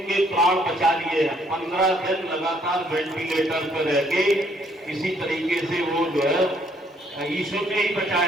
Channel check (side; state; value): both; normal; correlation 0.67